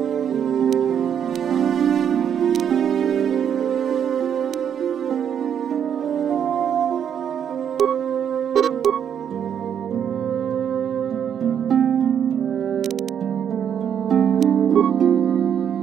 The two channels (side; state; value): left; quieter; 8.6 dB